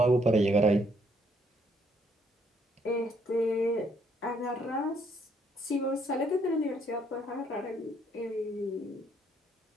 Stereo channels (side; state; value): both; normal; correlation 0.69